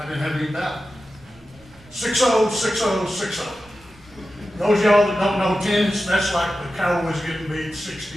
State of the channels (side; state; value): right; noise; rumble, 28 dB below the sound